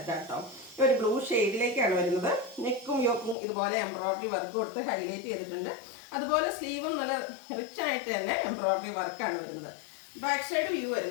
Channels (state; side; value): drops out; right; at 3.4 s